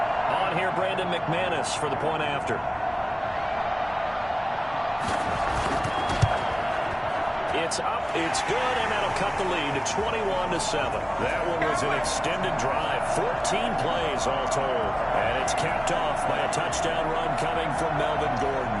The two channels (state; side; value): identical; both; correlation 1.00